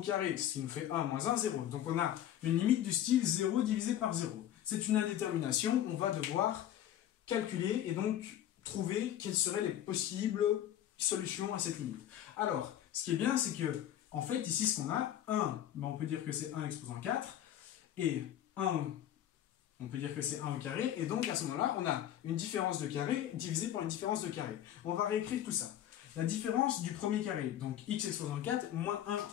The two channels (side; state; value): right; quieter; 11.4 dB